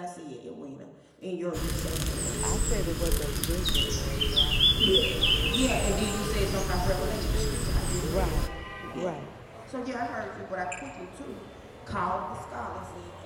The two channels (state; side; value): identical; both; correlation 1.00